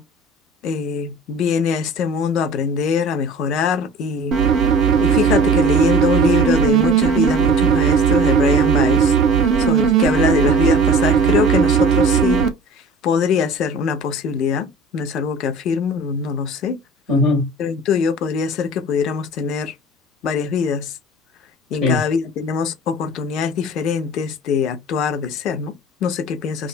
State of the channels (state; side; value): normal; both; correlation 0.42